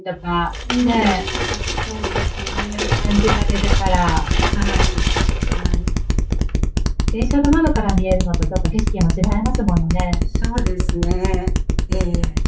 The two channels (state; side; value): identical; both; correlation 1.00